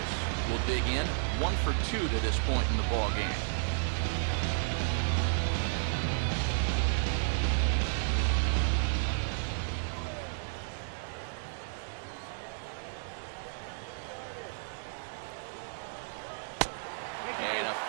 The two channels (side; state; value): left; silent; digital silence